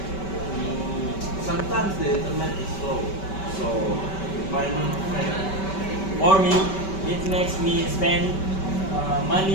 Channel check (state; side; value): late; right; 5.2 ms